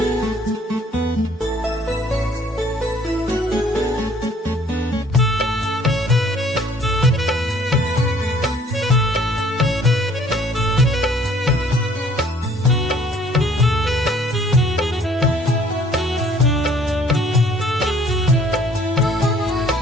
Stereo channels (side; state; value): both; normal; correlation 0.58